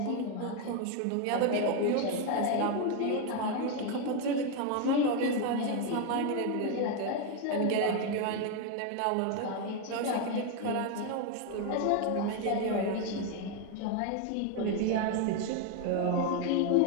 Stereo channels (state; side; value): different; both; correlation 0.01